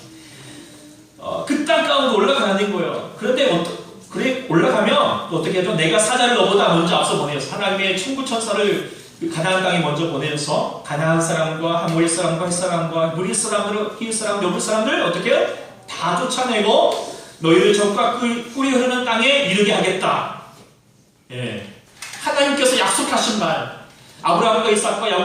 그 땅 가운데 올라가는 거예요. 그런데 그래 올라가면 또 어떻게 하죠? 내가 사자를 너보다 먼저 앞서 보내서 하나님의 천부 천사를 가나안 땅에 먼저 보내서 가나안 사람과 하모리 사람과 헷 사람과 무리 사람들, 히윗 사람, 여부 사람들 어떻게 해요? 다 쫓아내고 너희를 적과 꿀이 흐르는 땅에 이르게 하겠다. 예. 하나님께서 약속하신 말, 아브라함과 이삭과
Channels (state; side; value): identical; both; correlation 1.00